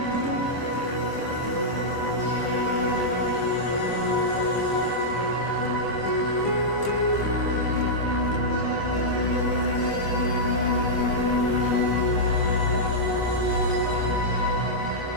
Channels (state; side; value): late; right; 25 ms